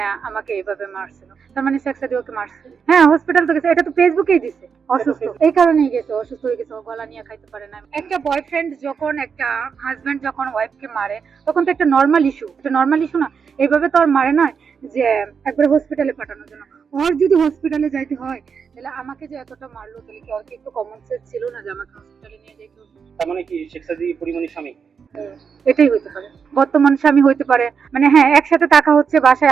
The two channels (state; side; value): quieter; left; 6.2 dB